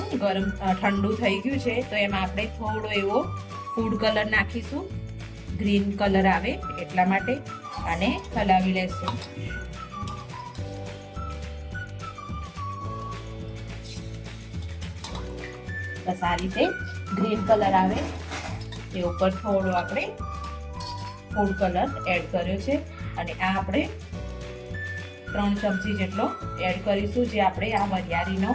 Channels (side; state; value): both; identical; correlation 1.00